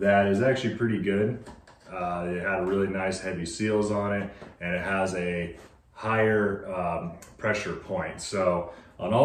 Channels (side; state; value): both; identical; correlation 1.00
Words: is actually pretty good. It had really nice heavy seals on it, and it has a higher pressure point. So on